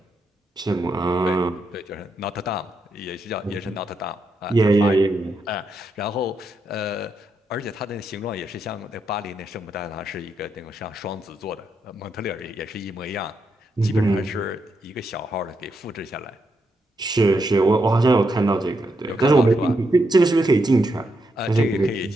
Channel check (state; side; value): normal; both; correlation 0.81